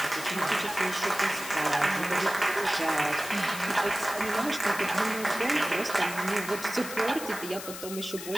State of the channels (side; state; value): left; noise; hiss, 10 dB below the sound